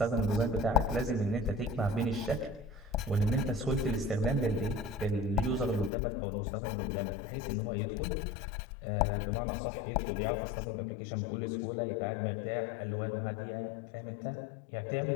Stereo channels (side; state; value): right; drops out; at 5.9 s